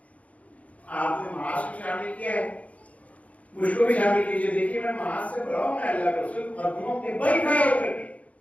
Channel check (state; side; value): late; right; 0.067 ms